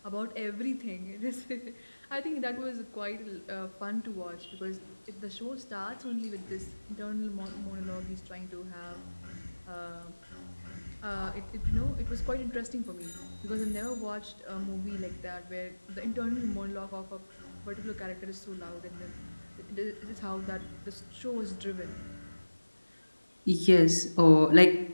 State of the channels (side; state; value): both; inverted; correlation -1.00